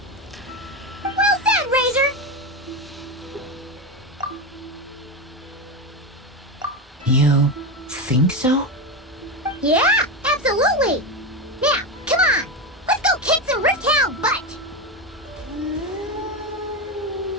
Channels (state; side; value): normal; both; correlation 0.15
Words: Well said, Razor. You think so? Yeah, absolutely. Now, come on. Let's go kick some Rift Hound butt.